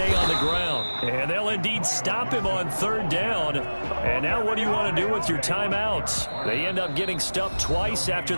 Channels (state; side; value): inverted; both; correlation -1.00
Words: on the ground, and they'll indeed stop him on 3rd down. And now what do you want to do with your timeouts? They end up getting stuffed twice after